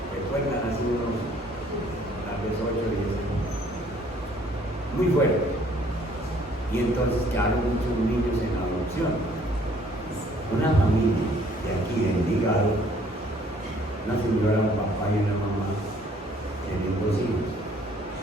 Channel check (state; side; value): normal; both; correlation 0.60